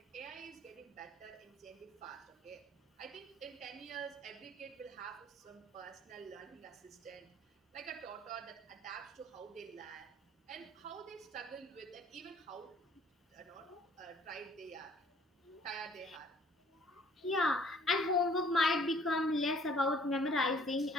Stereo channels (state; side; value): normal; both; correlation 0.57